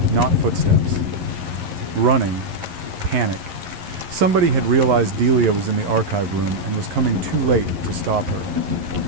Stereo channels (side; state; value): left; late; 11 ms